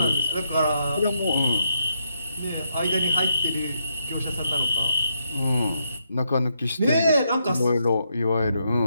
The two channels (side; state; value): both; inverted; correlation -0.78